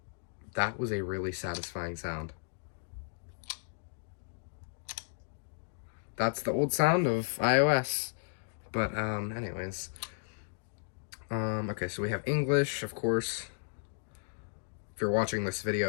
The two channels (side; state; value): right; silent; digital silence